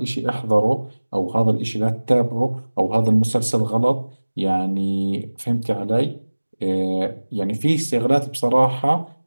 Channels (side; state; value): both; inverted; correlation -1.00